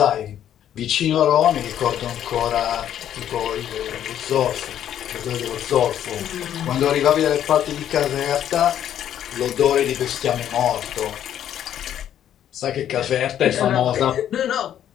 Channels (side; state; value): right; quieter; 10.5 dB